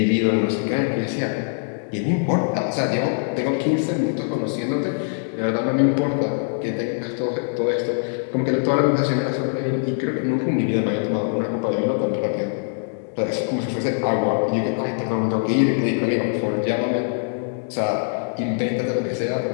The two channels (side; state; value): right; silent; digital silence